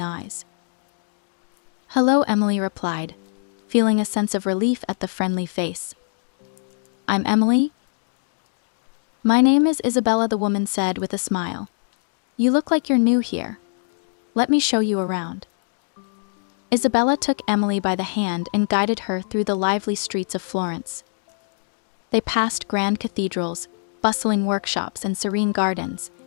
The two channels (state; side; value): silent; right; 63 dB below the other